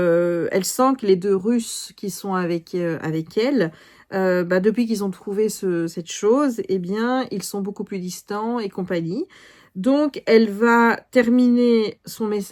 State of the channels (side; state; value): both; identical; correlation 1.00